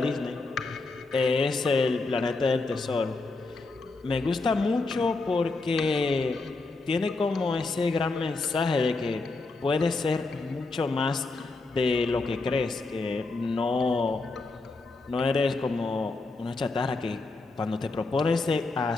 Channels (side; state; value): right; quieter; 3.6 dB